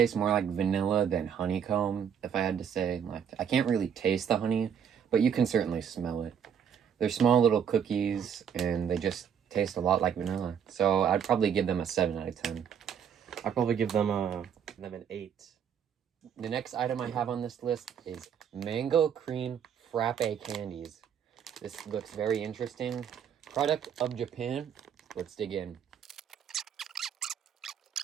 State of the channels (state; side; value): quieter; left; 8.0 dB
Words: more like vanilla than honeycomb, if I had to say. Like, I can't really taste the honey, but you can certainly smell it. They're small little cookies, and they just taste a lot like vanilla. So I'd probably give them a 7 out of 10. I'd probably give them an 8. The next item I have on this list is mango cream frappe candies. This looks very interesting. Product of Japan. Let's dig in.